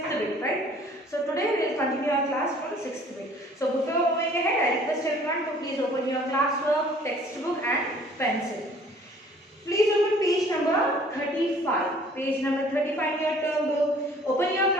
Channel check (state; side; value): normal; both; correlation 0.54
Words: bit, right? So today we will continue our class from 6th bit. So before moving ahead, I request everyone to please open your classwork, textbook and pencil. Please open page number 35. Page number 35 in your term book. Open your